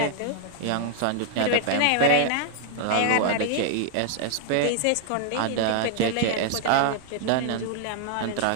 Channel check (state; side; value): different; both; correlation 0.00